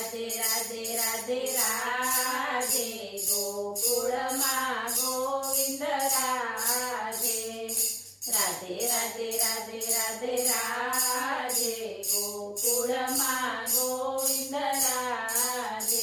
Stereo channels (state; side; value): identical; both; correlation 1.00